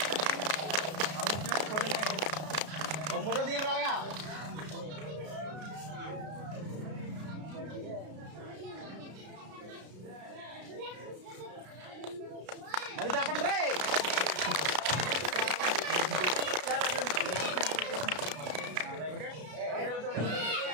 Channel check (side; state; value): left; late; 33 ms